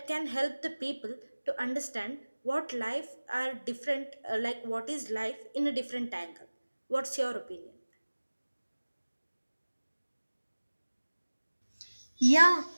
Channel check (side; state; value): both; inverted; correlation -1.00